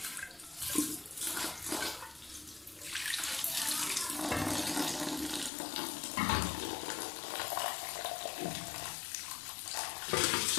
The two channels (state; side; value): drops out; right; at 5.5 s